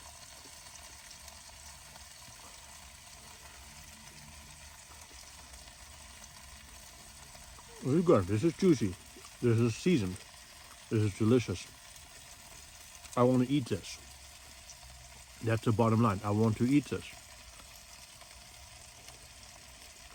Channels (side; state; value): both; identical; correlation 1.00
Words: This is good. This is juicy. This is seasoned. This is delicious. I want to eat this. That's the bottom line. I want to eat this.